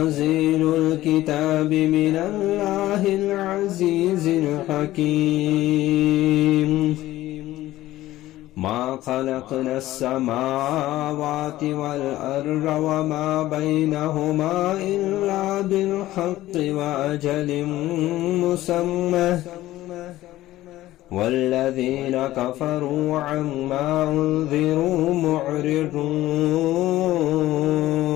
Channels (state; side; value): quieter; right; 15.6 dB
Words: الكتاب من الله العزيز الحكيم. ما خلقنا السماوات والأرض وما بينهما إلا بالحق وأجل مسمى والذين كفروا عما أنذروا معرضون.